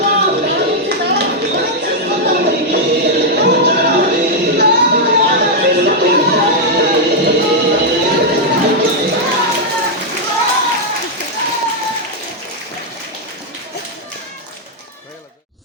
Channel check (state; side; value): normal; both; correlation -0.03